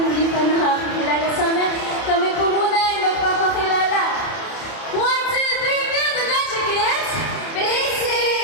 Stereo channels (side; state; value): right; late; 30 ms